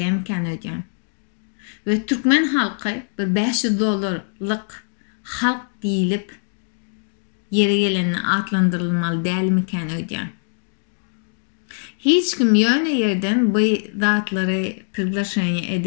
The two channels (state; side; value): silent; right; digital silence